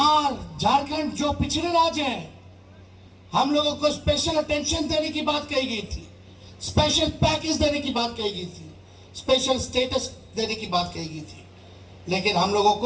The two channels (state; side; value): identical; both; correlation 1.00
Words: झारखंड जो पिछड़े राज्य हैं, हम लोगों को स्पेशल अटेंशन देने की बात कही गई थी, स्पेशल पैकेज देने की बात कही गई थी, स्पेशल स्टेटस देने की बात कही गई थी, लेकिन हम लोगों